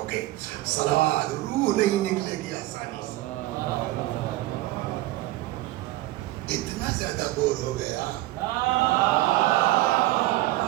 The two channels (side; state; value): left; quieter; 17.6 dB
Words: گے. صلوات. روح نہیں نکلے گی آسانی سے. اتنا زیادہ بور ہو گیا.